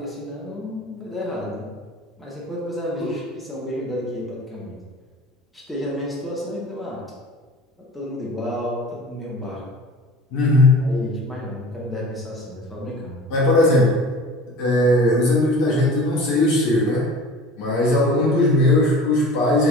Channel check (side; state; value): both; normal; correlation 0.40